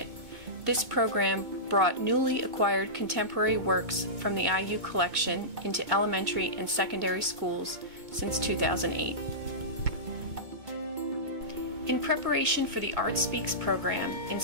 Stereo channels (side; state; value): left; late; 2.0 ms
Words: this program brought newly acquired contemporary works from the IU collection into elementary and secondary schools since 2008. In preparation for the Art Speaks program in